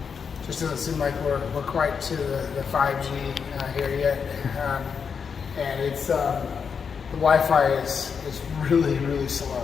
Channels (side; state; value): right; quieter; 6.3 dB